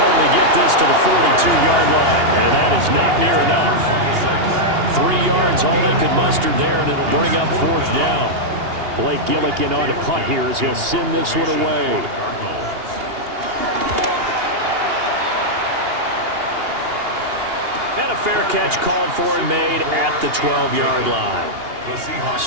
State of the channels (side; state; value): left; late; 2.8 ms